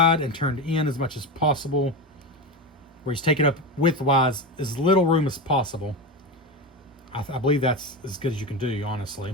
and turned in as much as possible, where he's taken up width-wise as little room as possible. I believe that's as good as you can do,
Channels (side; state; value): both; normal; correlation 0.19